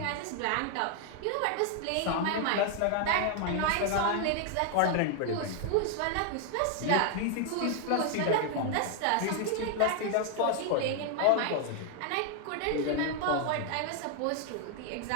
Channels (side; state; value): both; different; correlation 0.00